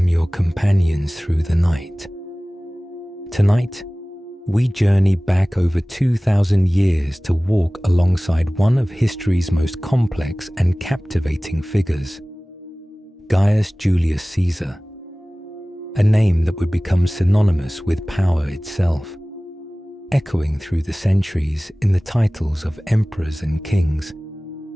your companions through the night. Tonight, we journey back over 2,000 years to walk alongside one of history's most complex and captivating figures, Gaius Julius Caesar, a name that would become synonymous with power itself, echoing through the centuries in the titles of emperors and kings.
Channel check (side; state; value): both; normal; correlation 0.98